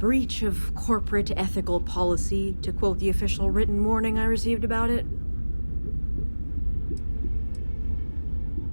of corporate ethical policy, to quote the official written warning I received about it.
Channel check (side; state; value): both; inverted; correlation -1.00